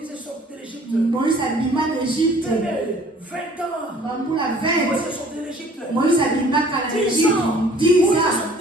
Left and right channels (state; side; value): normal; both; correlation 0.54